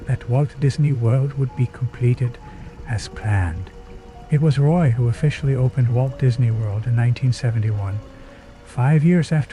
that Walt Disney World would be completed as planned. It was Roy who officially opened Walt Disney World in 1971, 5 years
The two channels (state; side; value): identical; both; correlation 1.00